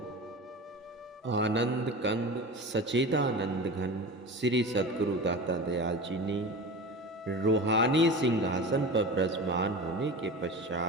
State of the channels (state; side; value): normal; both; correlation 0.31